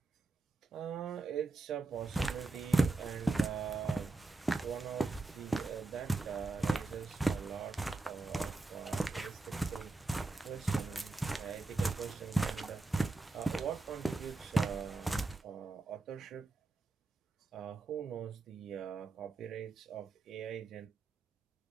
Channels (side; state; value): left; quieter; 3.3 dB